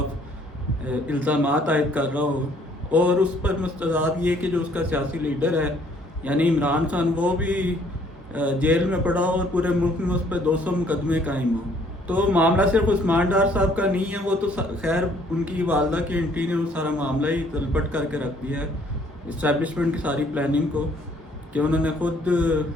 الزامات عائد کر رہا ہو، اور اس پر مستضاد یہ کہ جو اس کا سیاسی لیڈر ہے یعنی عمران خان وہ بھی جیل میں پڑا ہو اور پورے ملک میں اس پہ 200 مقدمے قائم ہوں۔ تو معاملہ صرف عثمان ڈار صاحب کا نہیں ہے، وہ تو خیر ان کی والدہ کی انٹری نے وہ سارا معاملہ ہی تلپٹ کر کے رکھ دیا ہے، اسٹیبلشمنٹ کی ساری پلاننگ کو، کہ انہوں نے خود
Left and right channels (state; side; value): normal; both; correlation 0.62